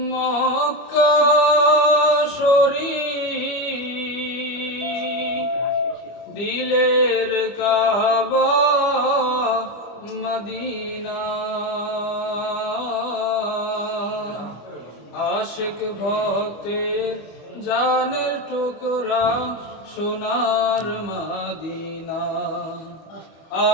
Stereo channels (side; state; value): right; late; 25 ms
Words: মক্কা শরীফ, দিলের কাবা মদিনা। আশিক ভক্তের জানের টুকরা সোনার মদিনা।